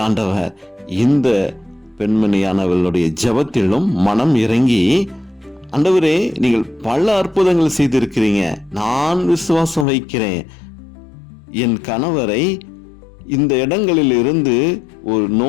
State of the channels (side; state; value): right; drops out; at 9.9 s